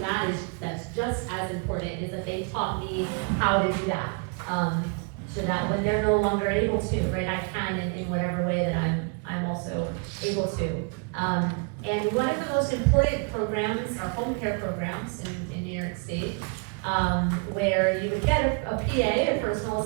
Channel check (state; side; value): quieter; left; 35.2 dB